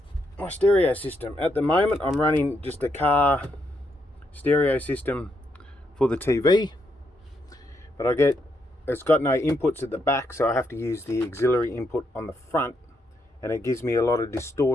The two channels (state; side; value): normal; both; correlation 0.78